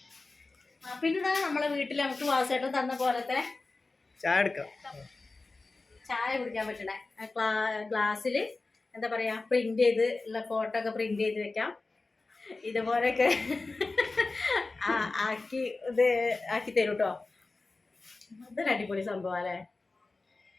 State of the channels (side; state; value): right; quieter; 3.5 dB